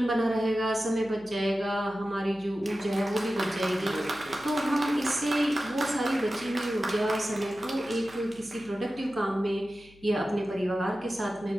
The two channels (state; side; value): noise; left; hum, 26 dB below the sound